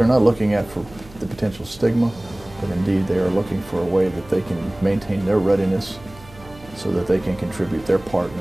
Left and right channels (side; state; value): right; noise; hum, 21 dB below the sound